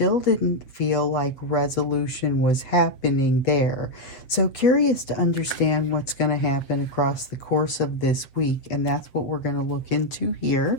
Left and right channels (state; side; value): late; right; 7.6 ms